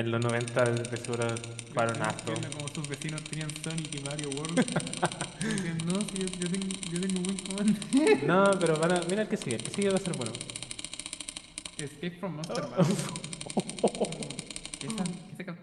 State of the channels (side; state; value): both; identical; correlation 1.00